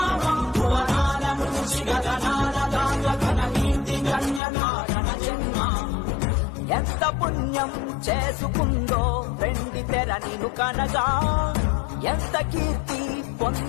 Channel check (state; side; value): drops out; right; at 4.4 s